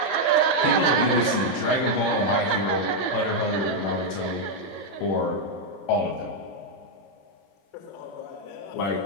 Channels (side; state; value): right; late; 31 ms